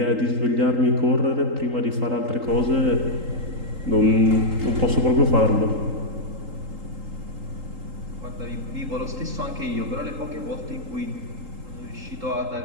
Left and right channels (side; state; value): left; late; 3.8 ms